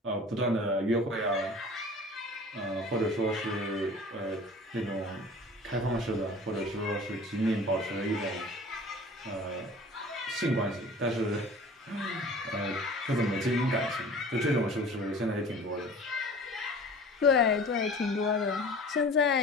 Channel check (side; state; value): both; normal; correlation 0.43